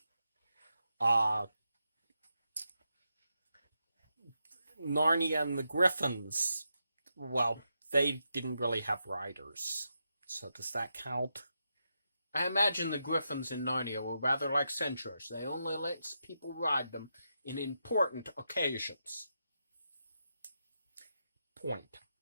Narnia and the Griffins, well, they didn't really have riders. So does that count? I imagine the Griffins in Narnia were rather like centaurs. They only let people ride them in important occasions. Point.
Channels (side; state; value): both; inverted; correlation -0.85